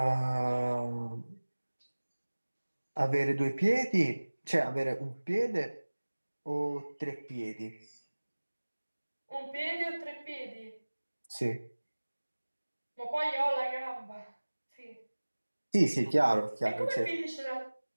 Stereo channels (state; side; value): inverted; both; correlation -1.00